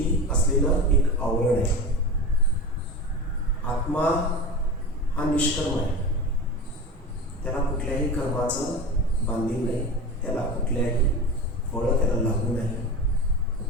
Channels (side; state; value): both; normal; correlation 0.27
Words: असलेलं एक आवरण आहे. आत्मा हा निष्कर्म आहे. त्याला कुठल्याही कर्माचं बांधील नाही, त्याला कुठल्याही फळं त्याला लागू नाही,